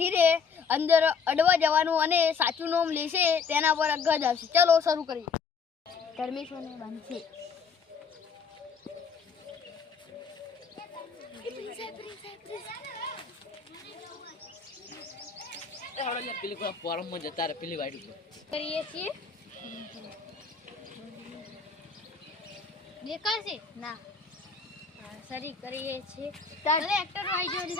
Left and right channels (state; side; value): quieter; right; 5.7 dB